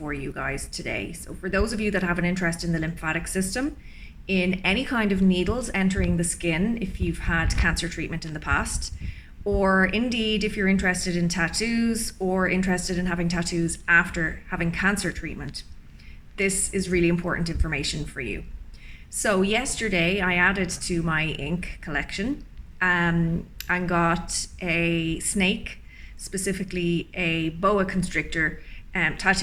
you guys today. So for those of you that have an interest in the lymphatic system, in any kind of needles entering the skin, if you've had cancer treatment in the past, or indeed if you're interested in tattoos or interested in having tattoos after having cancer treatment, this is really important information for you. So yesterday I added to my ink collection and got a snake, specifically a boa constrictor,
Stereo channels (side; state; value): both; identical; correlation 1.00